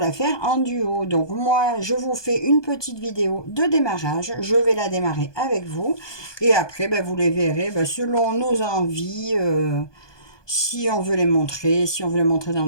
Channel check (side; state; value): right; late; 1.2 ms